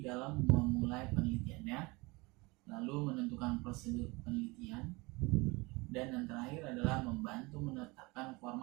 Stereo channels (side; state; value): left; quieter; 24.9 dB